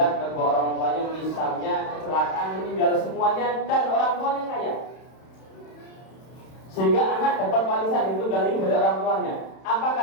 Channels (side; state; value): right; late; 31 ms